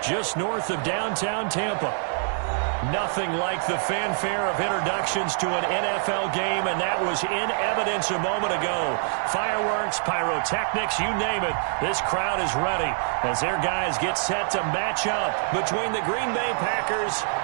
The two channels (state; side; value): silent; left; digital silence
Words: just north of downtown Tampa. Nothing like the fanfare of introductions to an NFL game, and that was in evidence a moment ago. Fireworks, pyrotechnics, you name it. This crowd is ready as their guys get set to match up between the Green Bay Packers